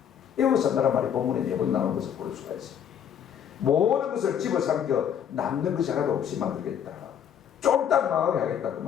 에워싼다는 말이 본문에 4번 나오는 것을 볼 수가 있습니다. 모든 것을 집어삼켜 남는 것이 하나도 없이 만들겠다. 쫄딱 망하게 하겠다 그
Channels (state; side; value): quieter; right; 8.7 dB